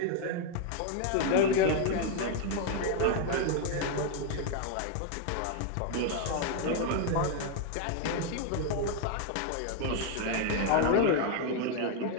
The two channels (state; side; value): different; both; correlation 0.00